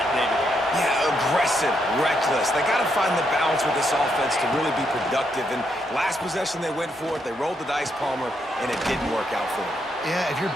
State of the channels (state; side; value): normal; both; correlation 0.78